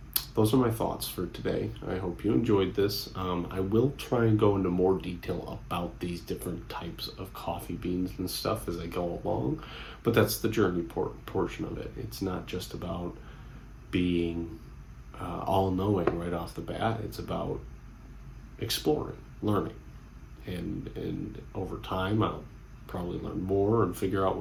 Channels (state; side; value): identical; both; correlation 1.00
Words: those are my thoughts for today. I hope you enjoyed this. I will try and go into more detail about these different types of coffee beans and stuff as I go along, but that's the journey portion of it. It's not just about being all-knowing right off the bat. It's about exploring, learning, and over time I'll probably learn more and figure out